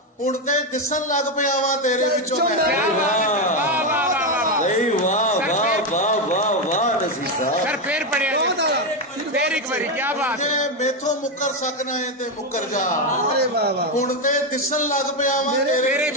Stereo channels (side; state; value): both; normal; correlation 0.08